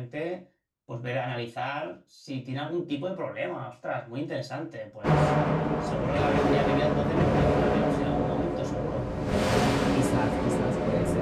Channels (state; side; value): identical; both; correlation 1.00